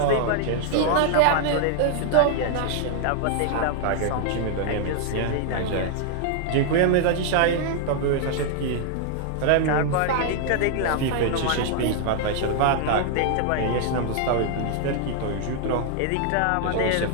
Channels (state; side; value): different; both; correlation 0.00